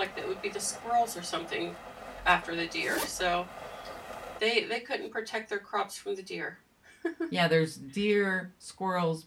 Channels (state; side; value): identical; both; correlation 1.00